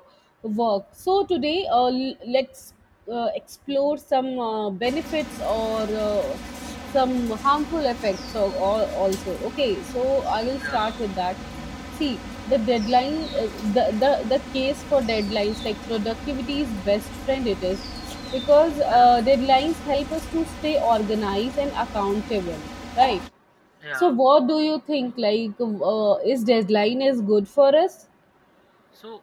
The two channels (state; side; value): identical; both; correlation 1.00